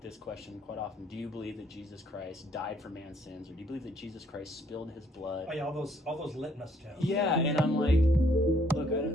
this question quite often. Do you believe that Jesus Christ died for man's sins? Or do you believe that Jesus Christ spilled his blood? Oh, yeah, all those litmus tests. Yeah, and I'm like, look,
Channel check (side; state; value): both; normal; correlation 0.66